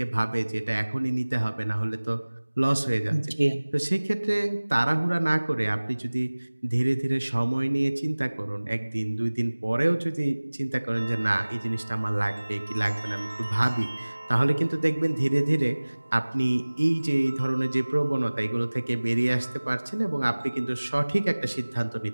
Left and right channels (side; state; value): both; inverted; correlation -1.00